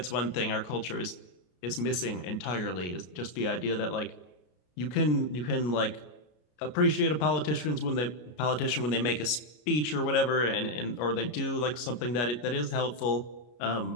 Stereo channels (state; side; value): late; right; 33 ms